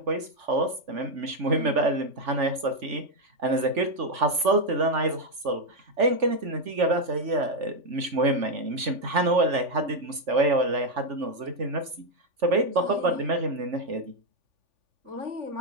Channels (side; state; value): left; late; 3.5 ms